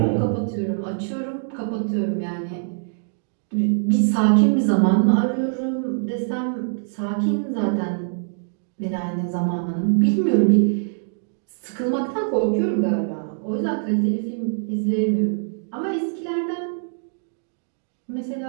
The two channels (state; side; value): silent; left; digital silence